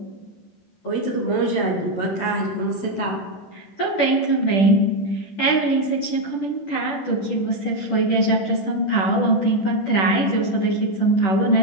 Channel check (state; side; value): late; right; 10 ms